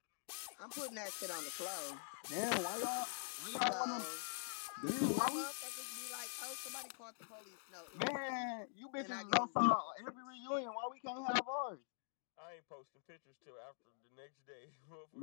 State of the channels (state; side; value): silent; right; digital silence